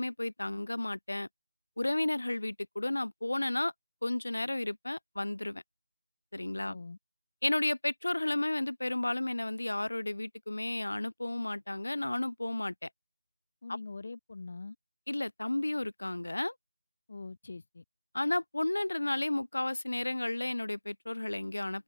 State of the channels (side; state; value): both; inverted; correlation -1.00